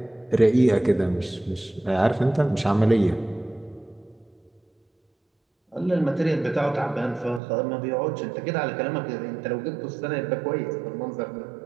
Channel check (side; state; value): left; drops out; at 7.4 s